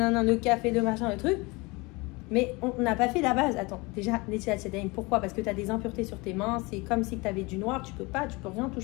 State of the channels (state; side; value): quieter; right; 25.3 dB